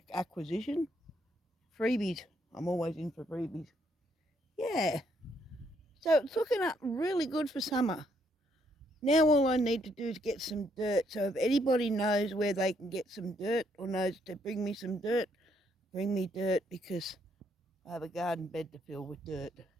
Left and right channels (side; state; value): both; normal; correlation 0.72